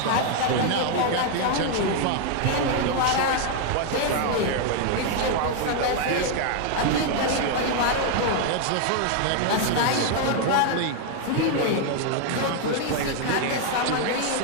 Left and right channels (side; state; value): both; different; correlation 0.00